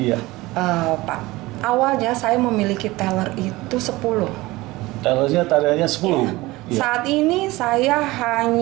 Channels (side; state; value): left; quieter; 20.1 dB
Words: Pak. Awalnya saya memiliki teller itu 10. Tellernya tadinya 10. Iya. Saat ini saya